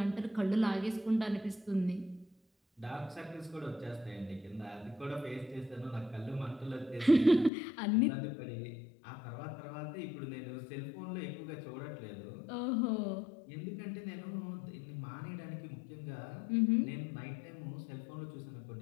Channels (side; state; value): right; drops out; at 7.5 s